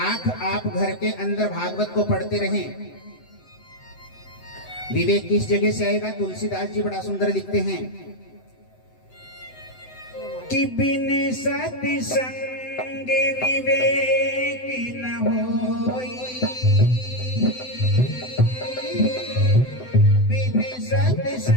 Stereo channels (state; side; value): late; right; 7.9 ms